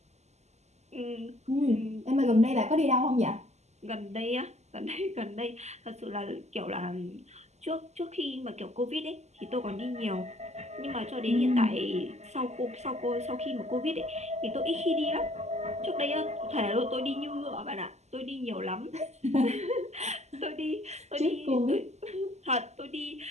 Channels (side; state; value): left; late; 0.33 ms